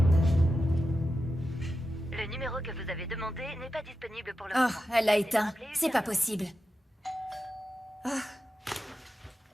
Le numéro que vous avez demandé n'est pas disponible pour le Oh, moment. elle l'a éteint. C'est pas possible.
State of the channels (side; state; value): both; normal; correlation 0.90